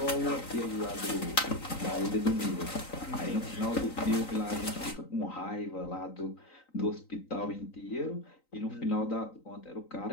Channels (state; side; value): late; right; 3.9 ms